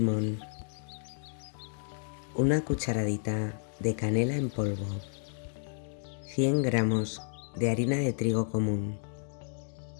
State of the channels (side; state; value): right; silent; digital silence